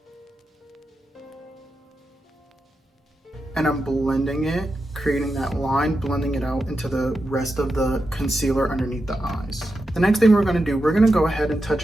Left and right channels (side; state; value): both; normal; correlation 0.88